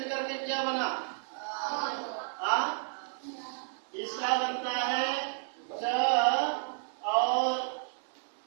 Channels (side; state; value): left; silent; digital silence